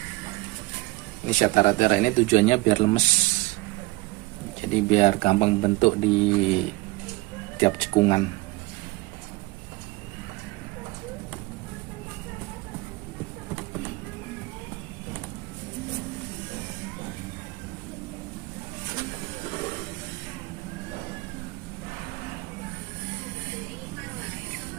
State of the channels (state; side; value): quieter; left; 21.6 dB